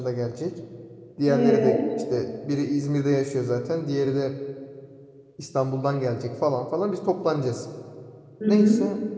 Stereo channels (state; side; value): identical; both; correlation 1.00